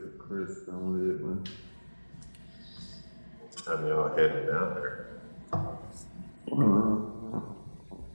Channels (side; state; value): both; inverted; correlation -1.00